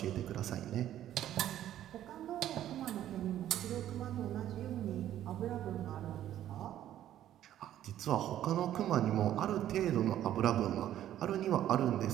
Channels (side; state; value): left; quieter; 11.9 dB